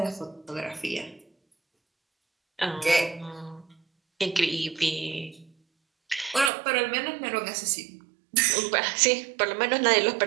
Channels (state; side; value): drops out; left; at 6.5 s